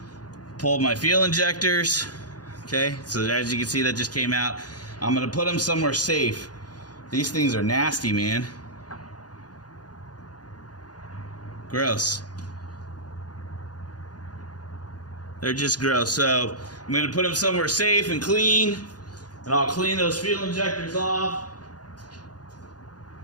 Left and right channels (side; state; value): right; late; 0.69 ms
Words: pull my fuel injectors. Okay, so as you can see, that just came out. I'm going to put them somewhere safe. These things are nasty, man. Gross. They're just gross. So I'm going to put them somewhere safe and clean, and I'll clean those fuel injectors off.